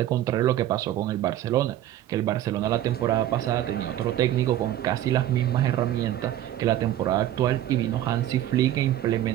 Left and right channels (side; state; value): left; quieter; 12.8 dB